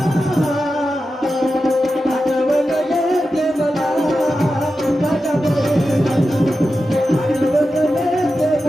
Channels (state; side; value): normal; both; correlation 0.91